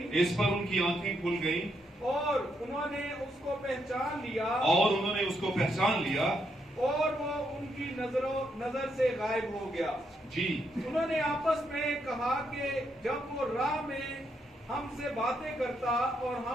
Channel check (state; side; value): normal; both; correlation 0.78